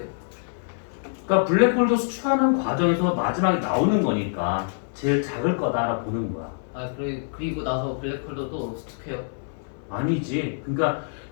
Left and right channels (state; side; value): silent; right; 62 dB below the other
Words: 그러니까 블랙홀도 수축하는 과정에서 마지막에 나오는 거니까 제일 작을 거다라고 보는 거야. 그리고 나서 블랙홀도 또 수축해요? 아니지. 그러니까